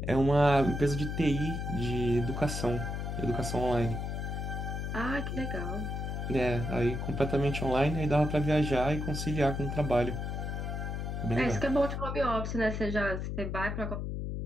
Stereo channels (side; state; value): left; noise; hum, 3 dB below the sound